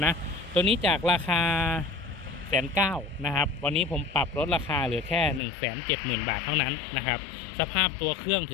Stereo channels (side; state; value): right; drops out; at 5.4 s